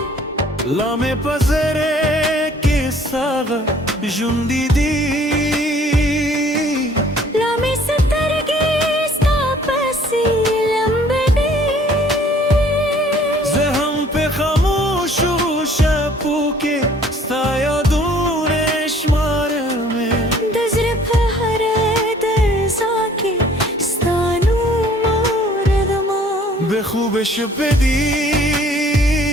لامه پزره کې ساغه ژوندې دي لامې سترګې ستا پسې لمبه دي زه هم په خاموشو شپو کې ستا یادونه شمارمه د زړه په هره درزا کې ستا نوم اورېدمه به خوب شپه دی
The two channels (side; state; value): both; normal; correlation 0.56